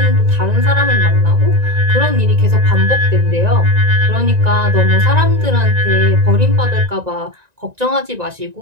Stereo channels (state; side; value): late; left; 1.9 ms